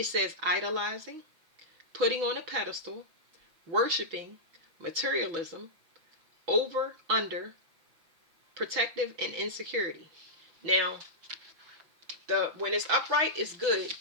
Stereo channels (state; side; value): late; left; 6.0 ms